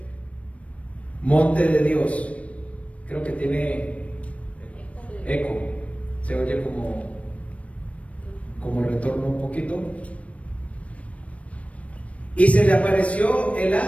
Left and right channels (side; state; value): right; late; 0.064 ms